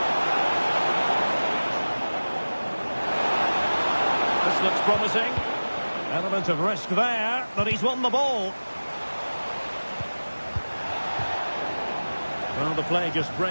This looks promising. Element of risk there, but he's won the ball. Well, the play just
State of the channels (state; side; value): inverted; both; correlation -1.00